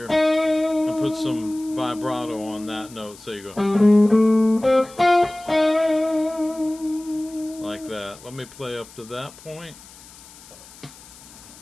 and put some vibrato on that note, so you go like that. Let me play up to that point.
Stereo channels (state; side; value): noise; left; hiss, 21 dB below the sound